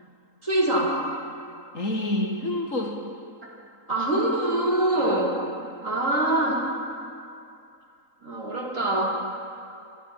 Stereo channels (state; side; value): late; right; 3.8 ms